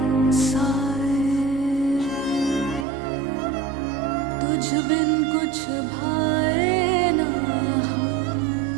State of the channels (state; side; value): drops out; left; at 2.9 s